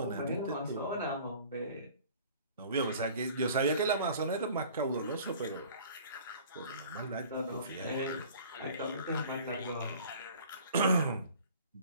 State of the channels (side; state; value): both; inverted; correlation -0.48